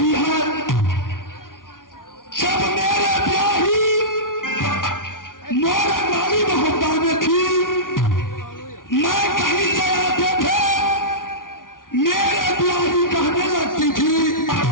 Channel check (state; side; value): late; right; 0.89 ms